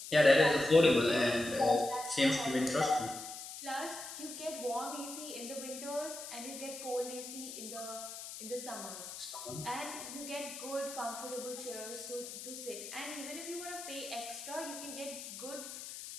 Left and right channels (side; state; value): left; noise; hiss, 10 dB below the sound